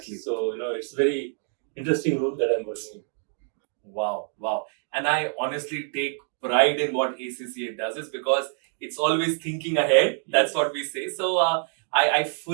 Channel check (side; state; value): left; silent; 55 dB below the other